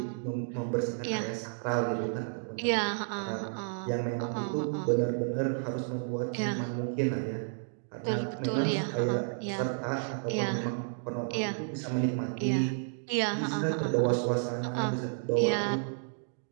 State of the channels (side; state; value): left; silent; digital silence